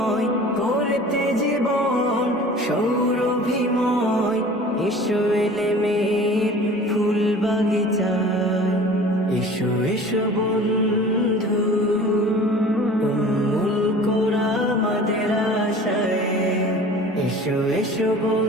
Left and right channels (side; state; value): both; normal; correlation 0.43